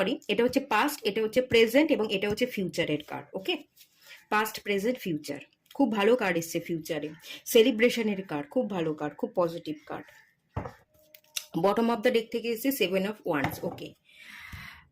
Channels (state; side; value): identical; both; correlation 1.00